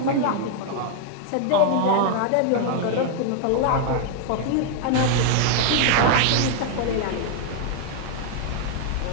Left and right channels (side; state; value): both; different; correlation 0.00